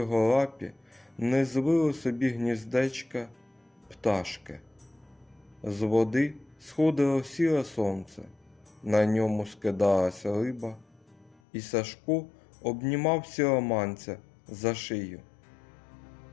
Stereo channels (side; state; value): right; drops out; at 11.4 s